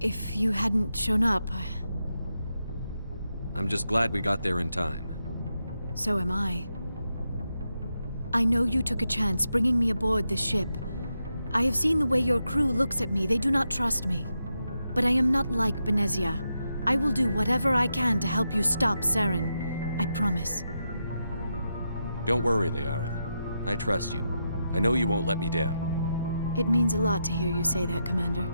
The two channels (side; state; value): both; inverted; correlation -0.85